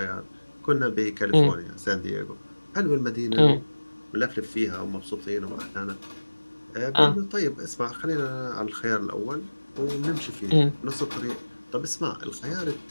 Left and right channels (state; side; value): inverted; both; correlation -1.00